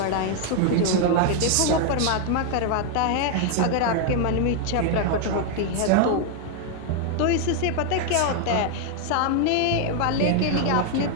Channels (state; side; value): different; both; correlation 0.00